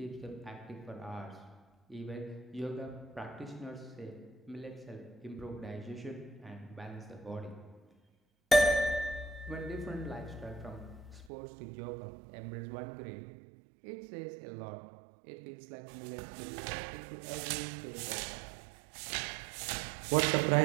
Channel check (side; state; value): left; drops out; at 11.3 s